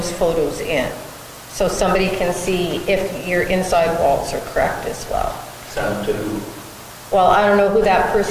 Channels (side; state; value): both; identical; correlation 1.00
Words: photos in. So somebody can see if your inside walls are correct as well. Send them to who? Well, I don't know who that